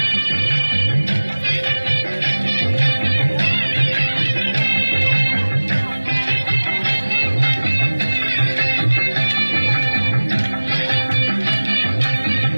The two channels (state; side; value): inverted; both; correlation -1.00